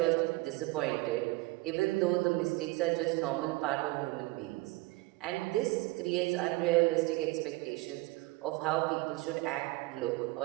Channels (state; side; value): quieter; left; 21.7 dB